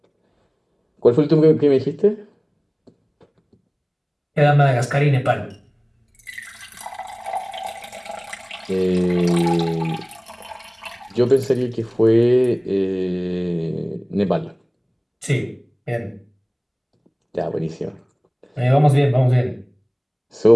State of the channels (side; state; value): both; identical; correlation 1.00